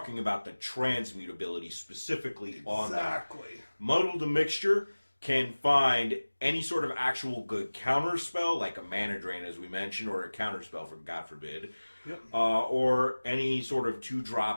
about the transmutability specifically on that. Exactly. Muddle the Mixture can find any sort of actual good counter spell, like a Mana Drain, as we mentioned, or a counter spell, for God forbid, yep. Or any sort of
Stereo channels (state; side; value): inverted; both; correlation -1.00